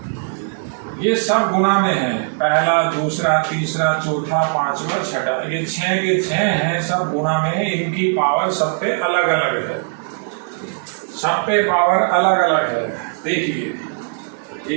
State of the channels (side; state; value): left; silent; 61 dB below the other